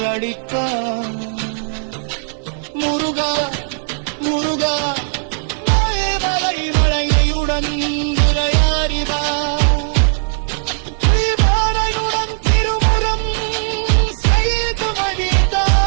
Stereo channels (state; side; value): silent; left; digital silence